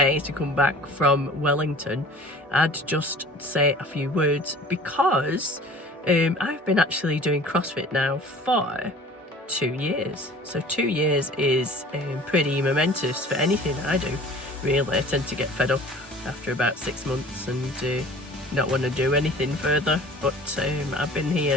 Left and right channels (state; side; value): normal; both; correlation 0.46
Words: to come back from Wellington, I'd just say a few words because I've been actually doing CrossFit now for 2 years. So 2 years is pretty momentous for anything I do, really. I tend to get fed up after about 6 months and not want to do anything further, but I've been